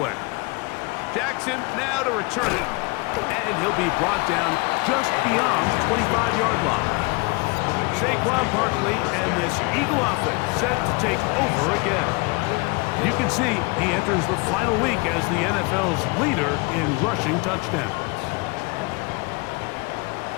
Jackson now to return it. And he'll be brought down just beyond the 25-yard line. Saquon Barkley and this Eagle offense set to take over again. You can see he enters the final week as the NFL's leader in rushing touchdowns.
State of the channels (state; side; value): quieter; right; 27.6 dB